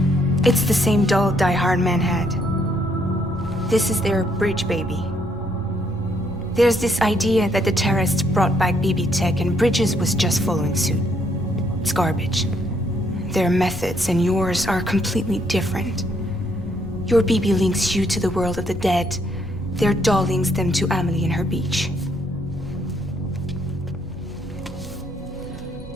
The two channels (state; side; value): normal; both; correlation 0.71